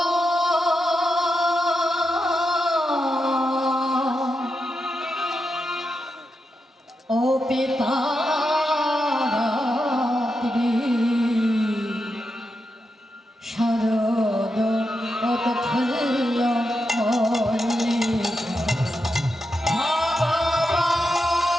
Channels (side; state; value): both; normal; correlation 0.86